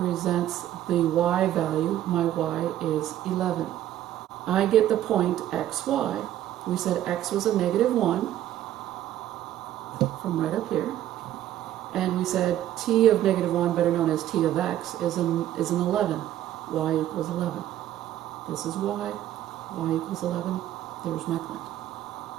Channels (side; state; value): left; quieter; 12.6 dB